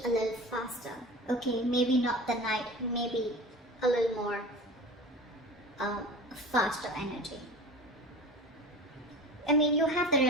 a little faster. Okay, maybe not the Knight, maybe a little more faster energy. I mean, you have the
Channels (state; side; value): normal; both; correlation 0.35